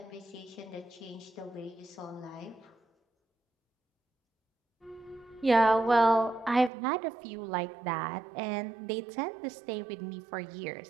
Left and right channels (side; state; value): left; drops out; at 6.7 s